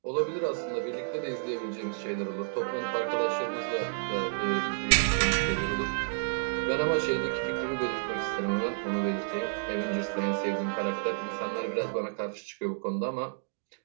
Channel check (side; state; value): left; silent; digital silence